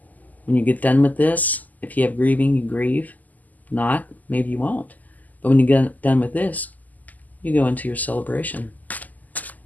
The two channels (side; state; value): right; late; 0.080 ms